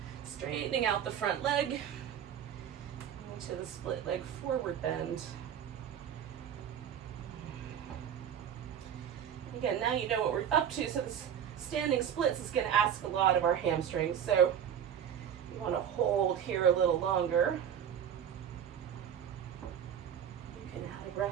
straightening out the front leg into the split leg forward bend. Again, now you know what we're up to, so this standing splits is going to ask a lot of our hamstrings, so you want to hold here a little longer. You can add a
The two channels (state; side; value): quieter; left; 9.0 dB